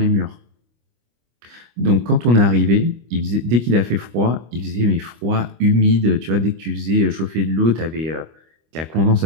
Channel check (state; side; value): late; left; 25 ms